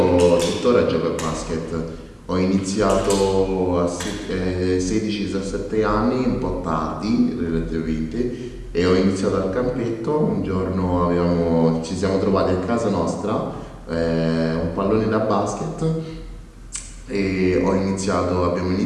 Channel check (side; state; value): both; identical; correlation 1.00